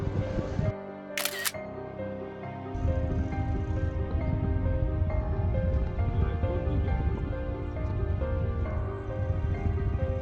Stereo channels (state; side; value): identical; both; correlation 1.00